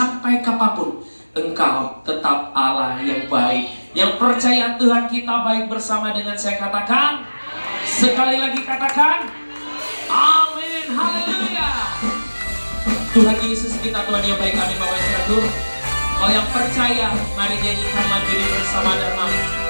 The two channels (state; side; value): inverted; both; correlation -1.00